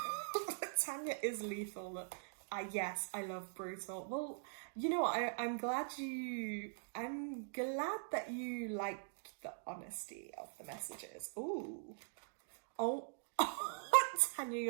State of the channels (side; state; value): left; silent; digital silence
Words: Tanya is lethal. Yes, I love brutal. Well, you know what? I'm glad that you like the honesty of the messages. Ooh. Oh, Tanya,